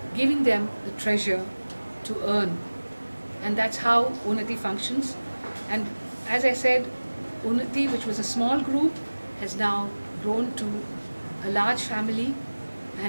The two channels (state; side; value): inverted; both; correlation -1.00